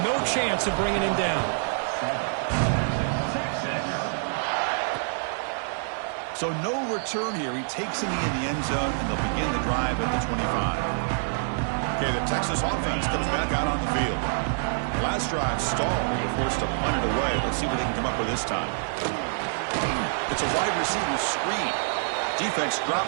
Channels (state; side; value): silent; left; digital silence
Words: no chance of bringing him down. So no return here. He takes him in the end zone, and they'll begin the drive at the 25. Okay, the Texas offense comes back out on the field. Last drive stalled. They were forced to punt it away. Let's see what they can come up with this time. It's a wide receiver screen. Defense